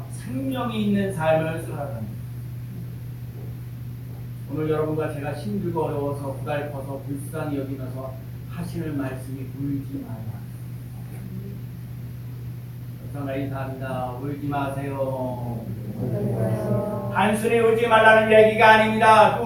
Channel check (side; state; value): both; identical; correlation 1.00